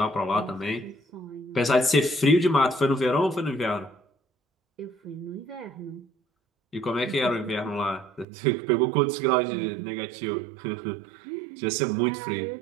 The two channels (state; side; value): drops out; left; at 8.2 s